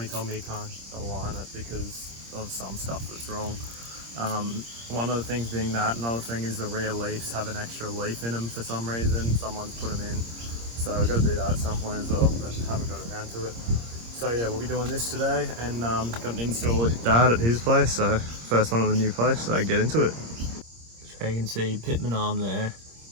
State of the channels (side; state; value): left; late; 26 ms